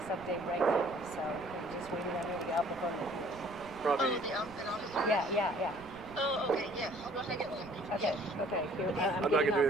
update right now, so I'm just waiting on him to get out before. Probably. Oh, the officer? Yeah. Oh, okay, yeah. I'll go ahead and get one. Okay. Here, I'm not going to do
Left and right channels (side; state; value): right; noise; rumble, 20 dB below the sound